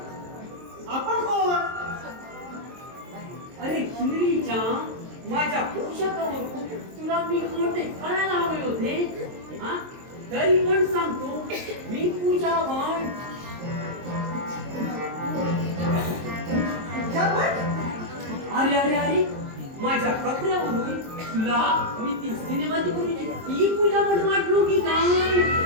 आपण कोण? अरे हिंदरीच्या माझ्या पोशाखावरून तुला मी कोणते कळायला हवे होते हा? तरी पण सांगतो मी पूजावान. अरे अरे अरे माझ्या कपड्यावरून तुला मी ती सिनेमाची गुरुची ही पूजा पण वाटलो की काय?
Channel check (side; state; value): left; late; 23 ms